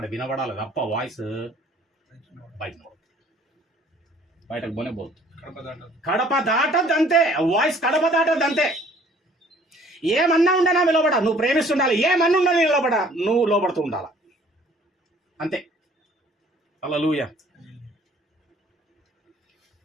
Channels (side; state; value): both; normal; correlation 0.56